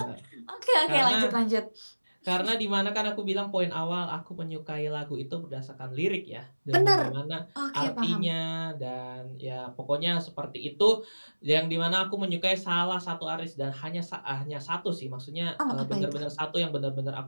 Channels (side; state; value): both; inverted; correlation -1.00